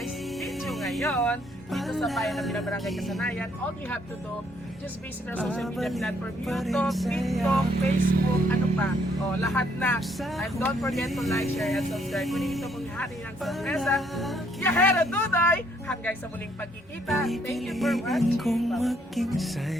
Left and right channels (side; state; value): both; normal; correlation 0.68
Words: video ngayon, dito sa bayan ng Barangay Kasanayan, all you have to do, just visit our social media platform, YouTube, TikTok, Facebook, ano pa, lahat na. And don't forget to like, share, and subscribe. Kunin ito pong hari ng sorpresa. Yahera Dudoy! Hanggang sa muling pagkikita. Thank you for watching.